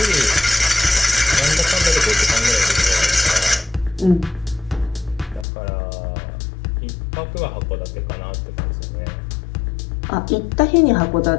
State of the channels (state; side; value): drops out; right; at 5.5 s